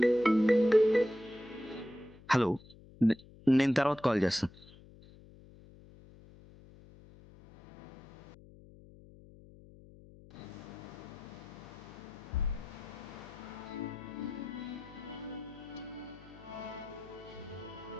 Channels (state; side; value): noise; left; hum, 21 dB below the sound